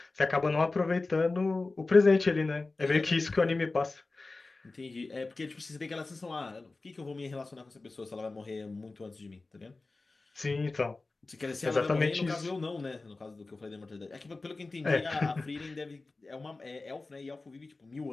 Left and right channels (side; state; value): right; quieter; 3.5 dB